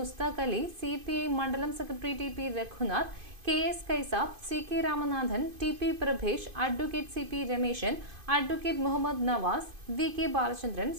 Ali, CPI മണ്ഡലം secretary TP Raghunath, KS Kaisab, CK Ramanathan, TP Prabhesh, advocate CP Rameshan, advocate Muhammad Nawaz, VK Balachandran,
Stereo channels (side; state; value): left; late; 2.5 ms